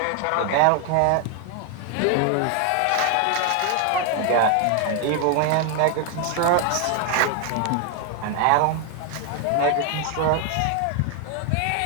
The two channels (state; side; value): different; both; correlation 0.01